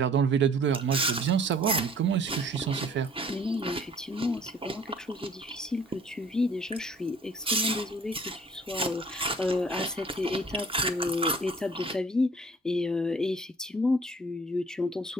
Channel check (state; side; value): normal; both; correlation 0.54